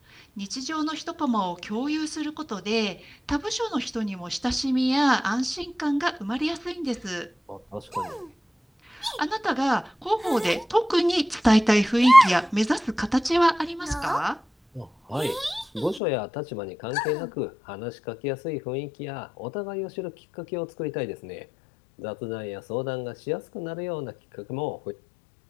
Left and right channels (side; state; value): right; drops out; at 16.0 s